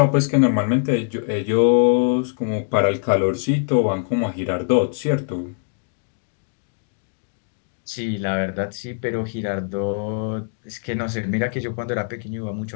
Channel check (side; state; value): right; silent; 64 dB below the other